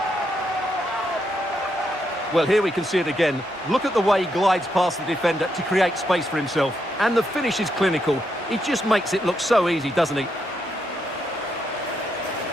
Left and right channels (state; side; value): normal; both; correlation 0.80